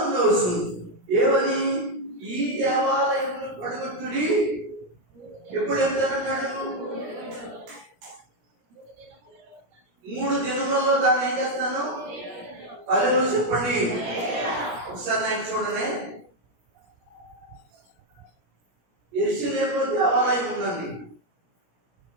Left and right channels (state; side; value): late; left; 17 ms